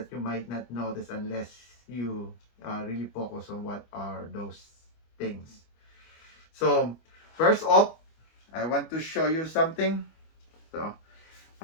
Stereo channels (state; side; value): late; right; 25 ms